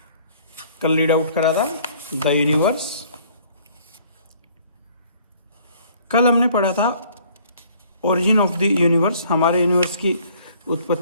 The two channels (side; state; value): both; inverted; correlation -0.58